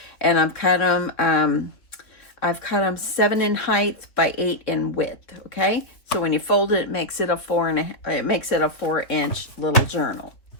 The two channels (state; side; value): late; right; 2.9 ms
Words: and I've cut them 7 in height by 8 in width. Okay, so when you fold it, it makes it a 4-inch little journal.